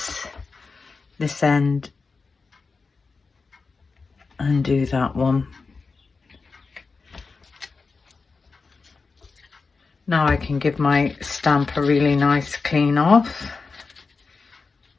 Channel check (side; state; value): right; quieter; 4.4 dB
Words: this end and do that one. Now I can give my stamp a really nice clean off.